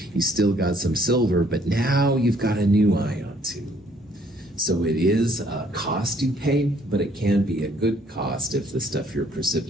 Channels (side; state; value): both; normal; correlation 0.63